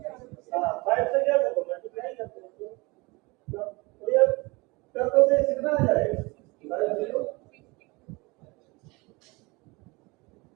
5 से क्या करो मल्टीप्लाई करते हो तो ये कर दो तो कितना आ जाएगा 0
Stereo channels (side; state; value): left; quieter; 25.1 dB